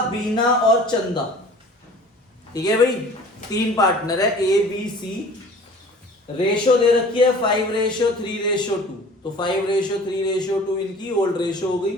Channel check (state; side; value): normal; both; correlation 0.46